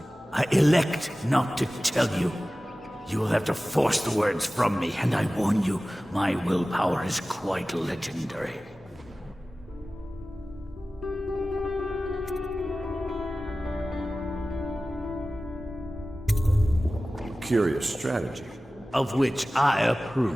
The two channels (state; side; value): normal; both; correlation 0.96